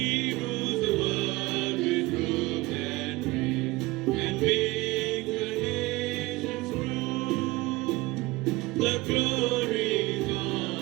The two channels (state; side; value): quieter; left; 21.2 dB